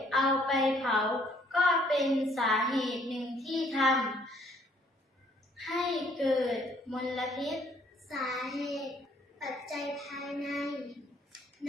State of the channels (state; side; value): normal; both; correlation 0.64